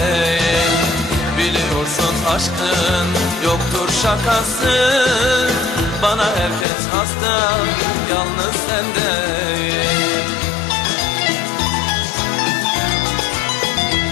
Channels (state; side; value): drops out; right; at 6.7 s